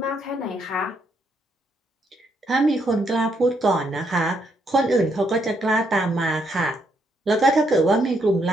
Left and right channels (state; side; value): normal; both; correlation 0.75